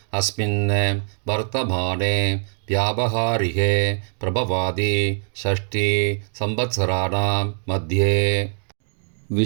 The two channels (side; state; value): left; silent; digital silence